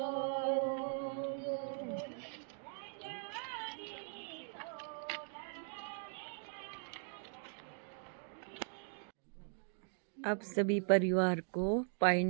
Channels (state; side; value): silent; left; 51 dB below the other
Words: अब सभी परिवार को पाइन